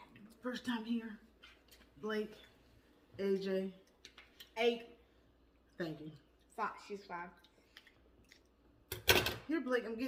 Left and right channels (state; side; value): identical; both; correlation 1.00